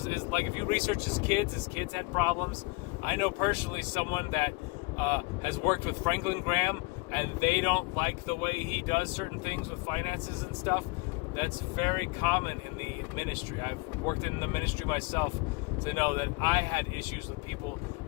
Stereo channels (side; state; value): right; quieter; 26.3 dB